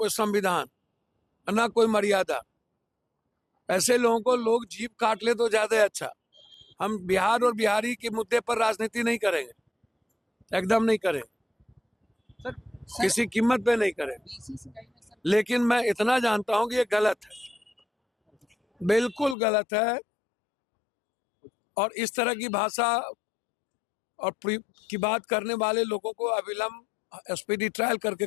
संविधान, ना कोई मर्यादा। ऐसे लोगों को लोग जीभ काट ले तो ज्यादा अच्छा। हम बिहार और बिहारी के मुद्दे पर राजनीति नहीं करेंगे, एकदम नहीं करेंगे, किसी कीमत पे नहीं करेंगे। लेकिन मैं इतना जानता हूं कि ये गलत है, बिल्कुल गलत है। और इस तरह की भाषा और की बात करने वाले लोगों को अविलंब स्पीडी ट्रायल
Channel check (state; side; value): drops out; right; at 19.4 s